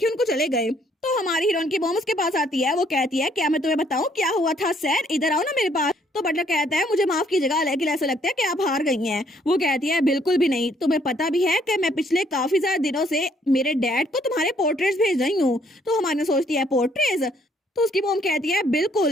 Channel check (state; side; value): normal; both; correlation 0.66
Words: उनको चले गए। तो हमारी हीरोइन की मॉम उसके पास आती है, वो कहती है क्या मैं तुम्हें बताऊं क्या हुआ था सर, इधर आओ ना मेरे पास। तो बटलर कहता है मुझे माफ कीजिएगा लेकिन ऐसा लगता है कि आप हार गई हैं। वो कहती है बिल्कुल भी नहीं, तुम्हें पता भी है कि मैं पिछले काफी ज्यादा दिनों से मेरे डैड को तुम्हारे पोर्ट्रेट्स भेज रही हूँ। तो हमारी सोचती है पोर्ट्रेट्स। तो उसकी मॉम कहती है